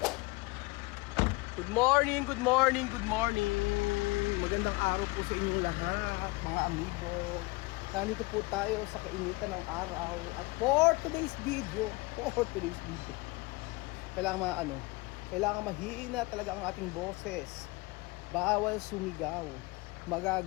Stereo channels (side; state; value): right; quieter; 23.7 dB